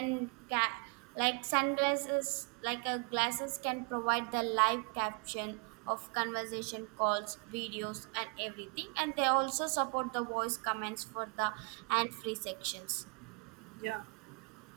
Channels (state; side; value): quieter; left; 34.7 dB